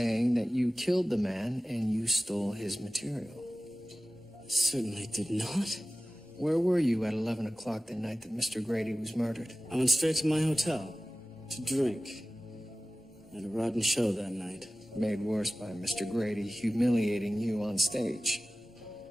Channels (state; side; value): normal; both; correlation 0.97